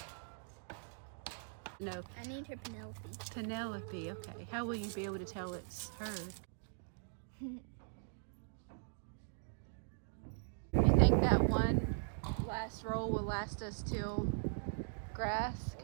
No. I need her Penelope. Penelope, okay. How will you be able to tell it's her? You think that one last roll will last us till grass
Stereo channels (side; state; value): left; silent; digital silence